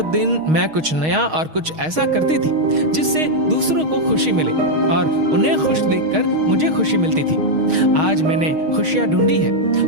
दिन मैं कुछ नया और कुछ ऐसा करती थी जिससे दूसरों को खुशी मिले और उन्हें खुश देखकर मुझे खुशी मिलती थी। आज मैंने खुशियां ढूंढी है,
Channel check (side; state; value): left; late; 6.4 ms